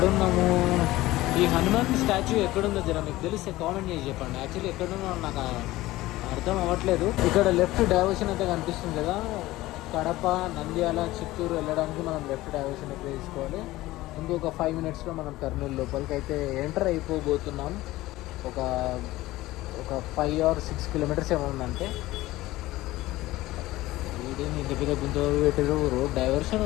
ఈ హనుమాన్ స్టాచ్యూ ఎక్కడుందో జర మీకు తెలిస్తే కామెంట్ చేసి చెప్పండి. యాక్చువల్లీ ఎక్కడున్నా నాకు అర్థం అవ్వట్లేదు. ఇక్కడ లెఫ్ట్ డైవర్షన్ అయితే కనిపిస్తుంది కదా, కడప, నంద్యాల, చిత్తూరు వెళ్ళడానికి మనం లెఫ్ట్ డైవర్షన్ అయితే తీసుకోవాలి. ఇంకొక 5 minutesలో మనం కర్నూలు లోపలికి అయితే ఎంటర్ అయిపోబోతున్నాం. ఒక 5 or 6 kilometers ఏమో ఉందంటే. వీడిని ఇంటి మీద గుంత పెట్టారు. రోడ్ డైవర్షన్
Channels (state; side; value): quieter; right; 17.6 dB